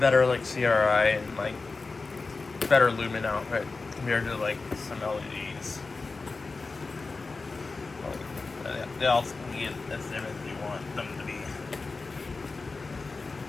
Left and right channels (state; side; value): quieter; right; 3.9 dB